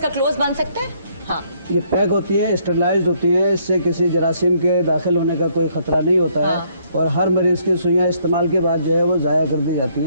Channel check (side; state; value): both; inverted; correlation -0.68